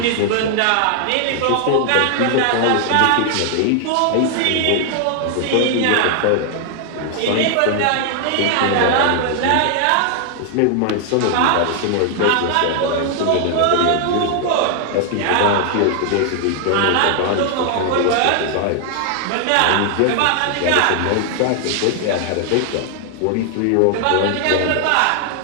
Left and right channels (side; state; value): both; different; correlation 0.00